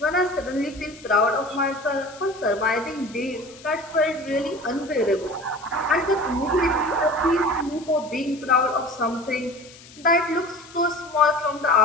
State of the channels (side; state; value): left; noise; hiss, 21 dB below the sound